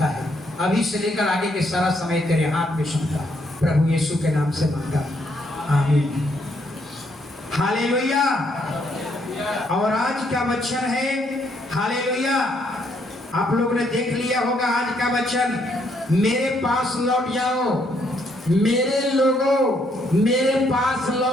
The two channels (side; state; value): both; normal; correlation 0.72